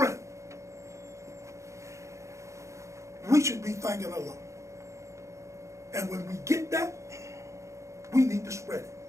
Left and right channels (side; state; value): left; late; 0.14 ms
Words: We should be thanking Allah. And when we get that, we need to spread it.